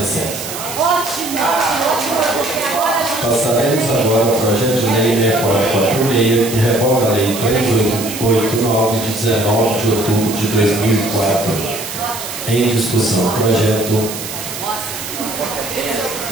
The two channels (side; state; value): right; noise; hiss, 8 dB below the sound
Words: Passaremos agora ao projeto de lei 6446, que revoga a lei 3889, de 19 de outubro de 2004. Em discussão, o projeto